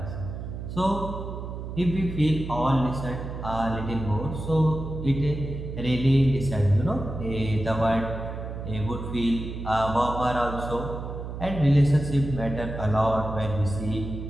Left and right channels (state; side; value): noise; right; hum, 7 dB below the sound